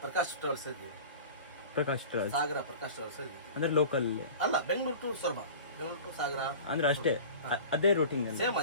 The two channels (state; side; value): inverted; both; correlation -0.38